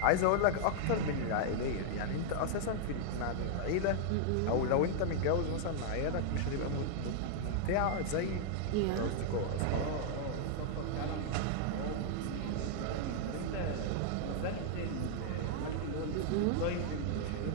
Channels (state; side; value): different; both; correlation -0.01